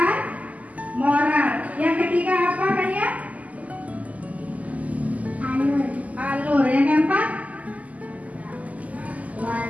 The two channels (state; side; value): late; left; 0.074 ms